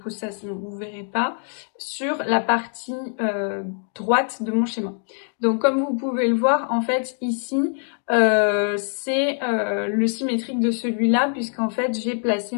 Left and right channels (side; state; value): right; silent; 55 dB below the other